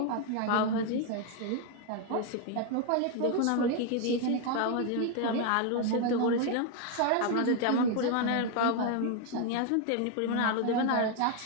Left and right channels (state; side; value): different; both; correlation 0.01